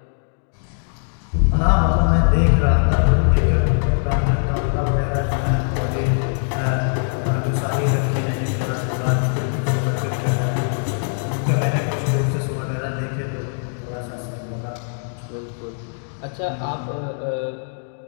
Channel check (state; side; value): silent; right; digital silence